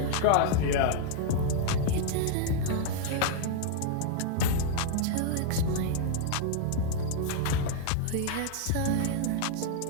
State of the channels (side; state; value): both; different; correlation -0.01